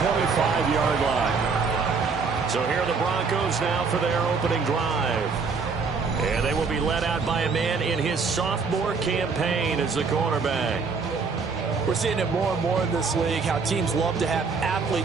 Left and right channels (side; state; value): left; quieter; 4.9 dB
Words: line. So here are the Broncos now for their opening drive. And they will be led out by a man in his sophomore campaign as the quarterback. We're seeing it more and more in this league, how teams love to have